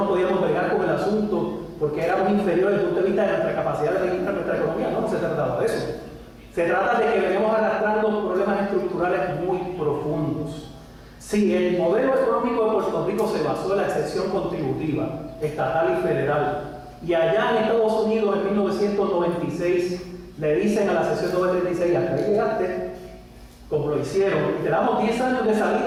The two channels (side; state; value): both; identical; correlation 1.00